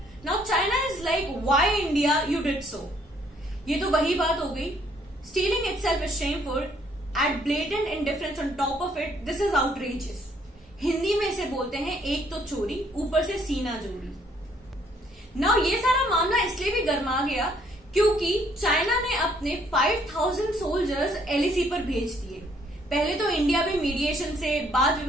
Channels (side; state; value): both; normal; correlation 0.66